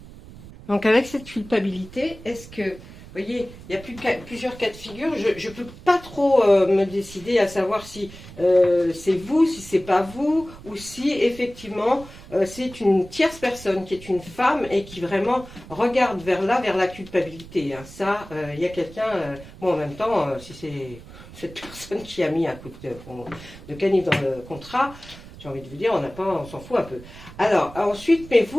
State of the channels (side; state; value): right; noise; rumble, 17 dB below the sound